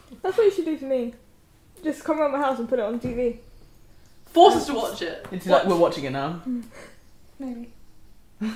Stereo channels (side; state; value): both; identical; correlation 1.00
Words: That's what you should do for me. Just come around my house and put it on TV. Force us to watch it. It's like we're watching it now. Maybe. So